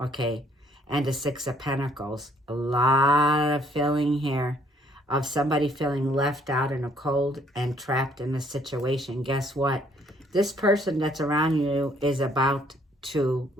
And the Six of Pentacles. A lot of feeling here of somebody feeling left out in a cold and trapped in a situation. Guess what? This person that's around you is about to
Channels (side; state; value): both; normal; correlation 0.64